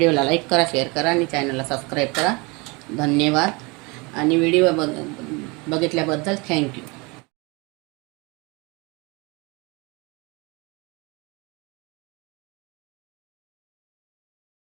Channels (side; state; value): left; quieter; 27.2 dB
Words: लाईक करा, शेअर करा आणि चॅनलला सबस्क्राईब करा. धन्यवाद. आणि व्हिडिओ बघितल्याबद्दल थँक्यू.